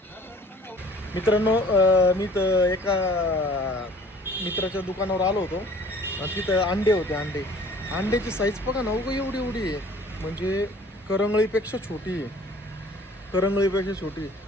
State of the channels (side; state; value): both; normal; correlation 0.51